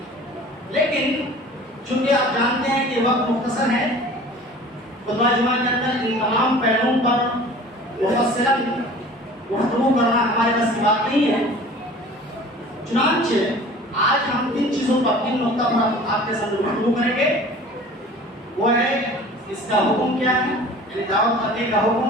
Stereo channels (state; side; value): normal; both; correlation 0.44